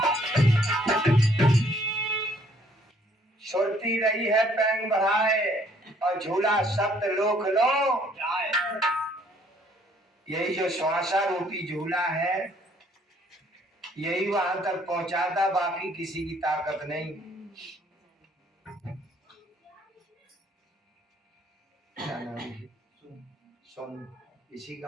सुरती रही है पैंग बढ़ाए और झूला सप्त लोक लो जाए। यही जो श्वासा रूपी झूला है यही वहां तक पहुंचाता, बाकी किसी की ताकत नहीं। क्या नाम है? सोन इसी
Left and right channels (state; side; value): normal; both; correlation 0.63